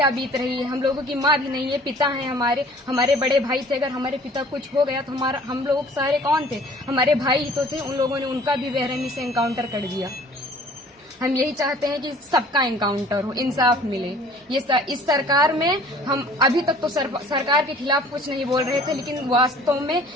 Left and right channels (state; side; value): normal; both; correlation 0.51